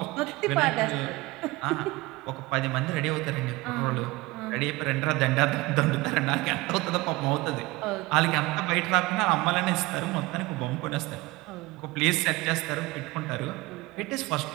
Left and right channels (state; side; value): quieter; left; 21.5 dB